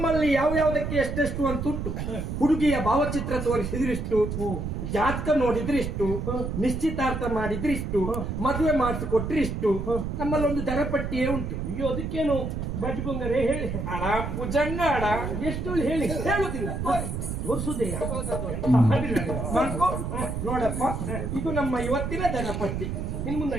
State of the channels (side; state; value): right; noise; rumble, 4 dB below the sound